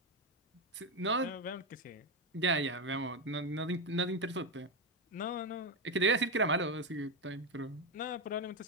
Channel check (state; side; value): normal; both; correlation 0.09